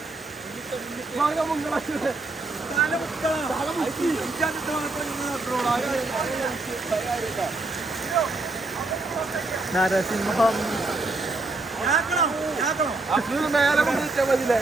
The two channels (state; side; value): quieter; left; 3.2 dB